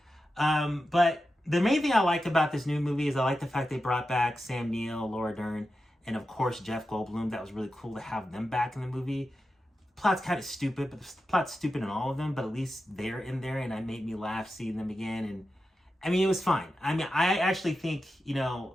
But the main thing I like about this new movie is I like the fact they brought back Sam Neill, Laura Dern, and of course Jeff Goldblum. That was really cool to have them back in the movie. Plot's kind of stupid, but the plot's stupid in all of them, but at least they're in there, and it made me laugh seeing them again. And I mean, it was fine. I mean, I actually think, you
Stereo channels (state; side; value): normal; both; correlation 0.91